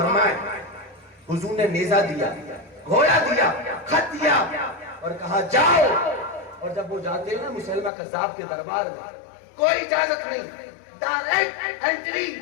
حضور نے نیزہ دیا, گھوڑا دیا, خط دیا اور کہا جاؤ. اور جب وہ جاتے ہیں نا مسلمہ کذاب کے دربار میں, کوئی اجازت نہیں, ڈائریکٹ انٹری.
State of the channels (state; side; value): drops out; right; at 7.9 s